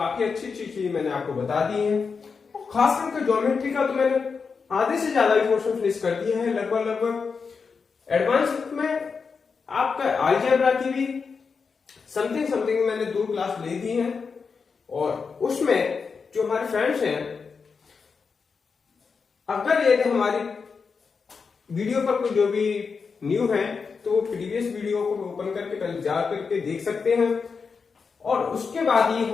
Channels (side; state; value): right; quieter; 5.3 dB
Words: अच्छी चीज मैंने आपको बता दी है। खास करके ज्योमेट्री का तो मैंने आधे से ज्यादा पोर्शन फिनिश कर दिया है लगभग। एडवांस में आपका अलजेब्रा की भी समथिंग मैंने दो क्लास ले दी है और उसमें जो हमारे फ्रेंड्स हैं, अगर यदि हमारी वीडियो पर कोई जो भी न्यू है तो वो प्रीवियस वीडियो को ओपन करके पहले जा करके देख सकते हैं और उसके बाद ही